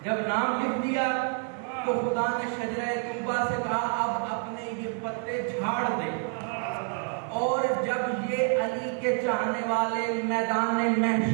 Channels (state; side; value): quieter; left; 38.6 dB